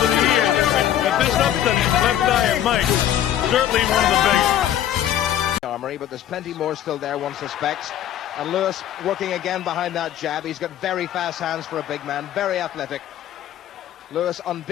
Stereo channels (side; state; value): right; quieter; 11.3 dB